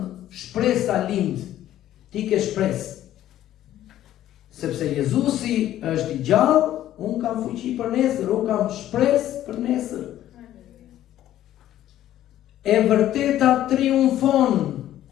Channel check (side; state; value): right; quieter; 12.7 dB